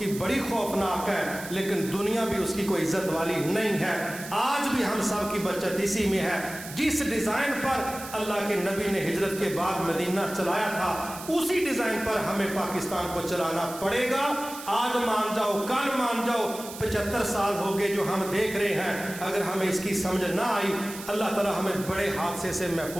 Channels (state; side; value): noise; right; hiss, 13 dB below the sound